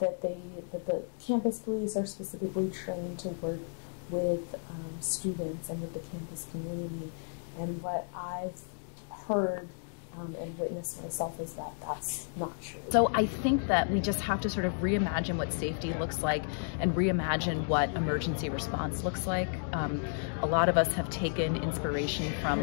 the campus police are specifically trained to work with students and with the campus community. And what I've heard and witnessed myself is that that's not true. So I think that we just have to sort of reimagine what safety looks like and reimagine what emergency response looks like. A lot of us have taken inspiration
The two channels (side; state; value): right; silent; digital silence